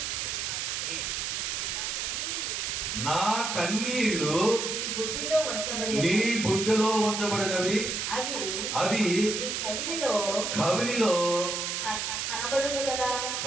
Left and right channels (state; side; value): noise; right; hiss, 2 dB below the sound